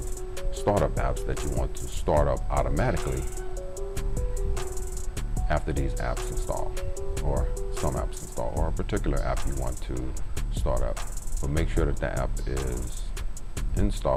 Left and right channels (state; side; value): identical; both; correlation 1.00